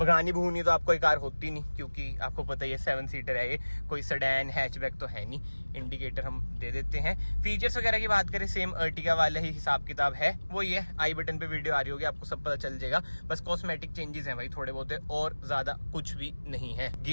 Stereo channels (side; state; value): both; inverted; correlation -1.00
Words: भूनी तो आपको ये कार होती नहीं, क्योंकि आपको पता ही है 7 सीटर है ये, कोई सेडान हैचबैक तो है नहीं। इंडिकेटर हम दे देते हैं। फीचर्स वगैरह की बात करें, सेम अर्टिगा वाला ही हिसाब किताब है। वो ये आई बटन पे वीडियो आ रही होगी, आपको सब पता चल जाएगा। बस कॉस्मेटिक चेंजेस हैं भाई थोड़े बहुत, और ज्यादा कुछ भी नहीं है।